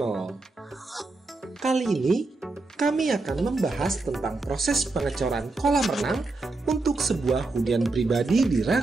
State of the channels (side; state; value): left; quieter; 3.4 dB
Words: Kali ini kami akan membahas tentang proses pengecoran kolam renang untuk sebuah hunian pribadi di